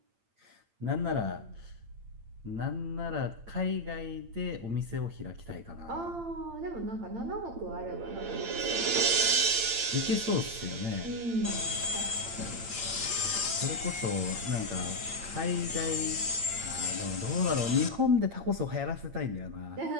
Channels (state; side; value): late; left; 8.8 ms